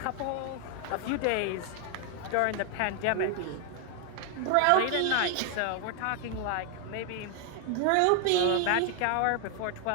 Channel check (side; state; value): both; different; correlation 0.00